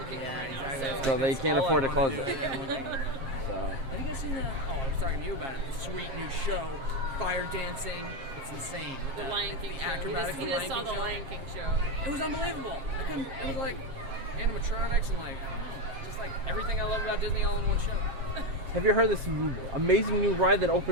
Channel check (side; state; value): left; late; 7.5 ms